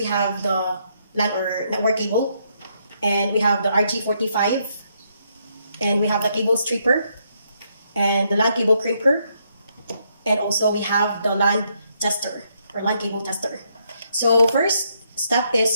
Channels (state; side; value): inverted; both; correlation -0.75